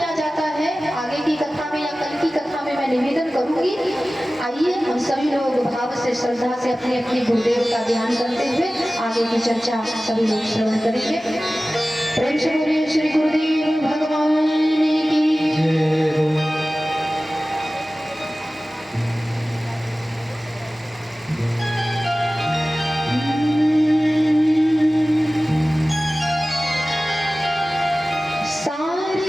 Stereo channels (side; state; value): both; normal; correlation 0.97